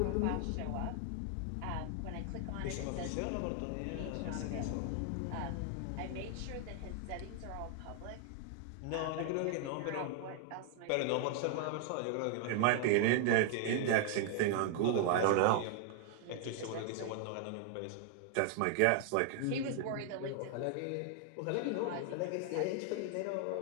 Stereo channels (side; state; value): both; different; correlation 0.00